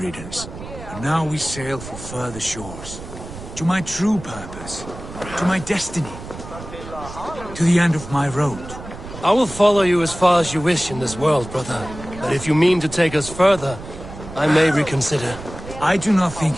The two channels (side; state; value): right; noise; rumble, 13 dB below the sound